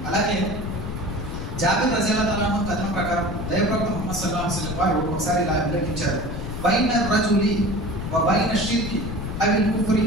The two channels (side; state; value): left; noise; rumble, 6 dB below the sound